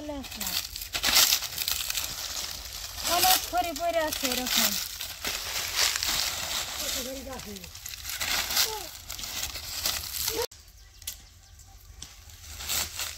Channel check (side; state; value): both; identical; correlation 1.00